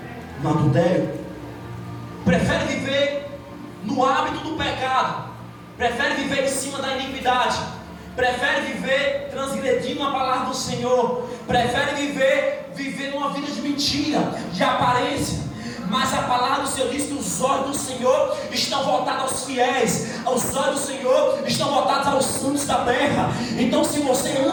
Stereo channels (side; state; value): both; identical; correlation 1.00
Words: no adultério. Prefere viver no hábito do pecado, prefere viver em cima da iniquidade, prefere viver transgredindo a palavra do Senhor, prefere viver numa vida de mentira, de aparência. Mas a palavra do Senhor diz que os olhos do Senhor estão voltados aos fiéis, os olhos do Senhor estão voltados aos santos da terra. Então, se você